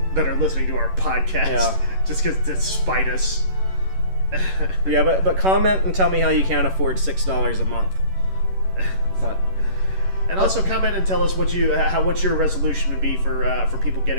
are listening to our podcast just because to spite us. Yeah, but comment and tell me how you can't afford $6 a month. But and also comment and tell us what your resolution would be for people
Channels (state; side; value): late; left; 11 ms